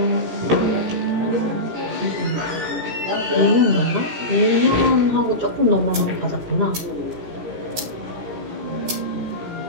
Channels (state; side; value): late; left; 17 ms